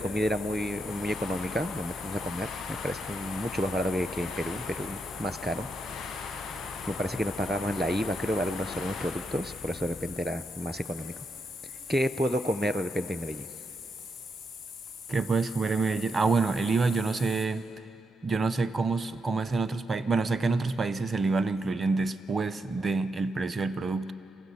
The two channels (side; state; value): both; normal; correlation 0.82